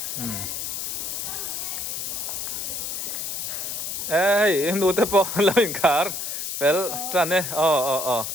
ê nu te po lo in car pel trane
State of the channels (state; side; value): noise; left; hiss, 4 dB below the sound